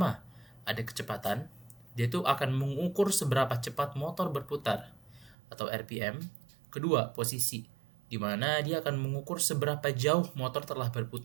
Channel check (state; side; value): drops out; left; at 5.4 s